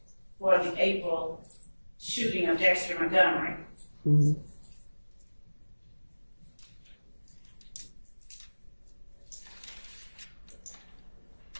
for the April shooting of Dexter Montgomery. Mm-hmm.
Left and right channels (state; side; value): inverted; both; correlation -1.00